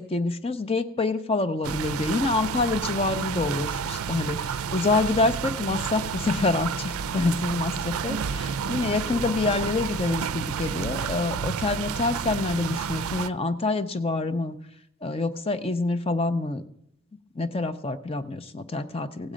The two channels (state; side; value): normal; both; correlation 0.43